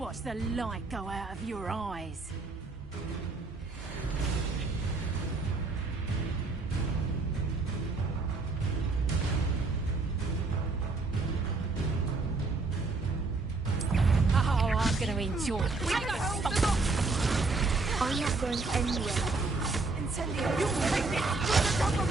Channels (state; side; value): quieter; left; 3.7 dB